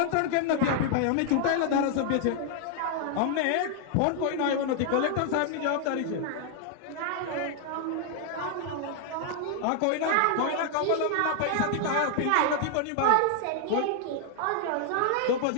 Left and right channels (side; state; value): both; different; correlation 0.00